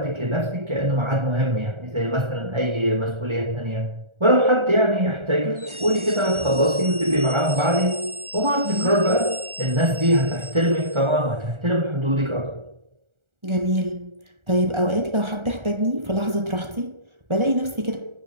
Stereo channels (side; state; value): left; late; 1.4 ms